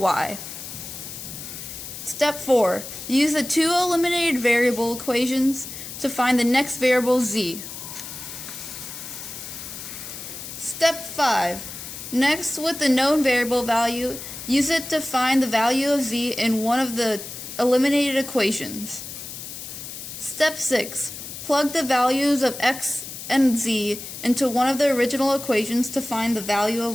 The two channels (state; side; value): noise; left; hiss, 10 dB below the sound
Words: Step 4. Use the 2 eliminated variable equations to find the next variable z. Step 5. Next, with the known variable value, use it to find the value of z in one of the eliminated equations. Step 6. Plug the values of x and z into one of the original equations to find the value